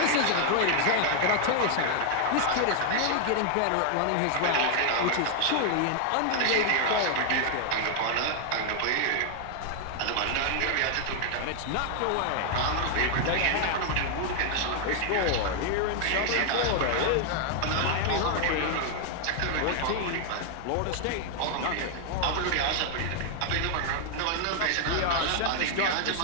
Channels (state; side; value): different; both; correlation 0.00